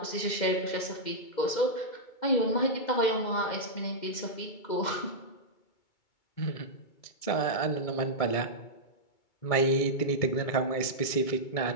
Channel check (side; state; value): right; late; 2.3 ms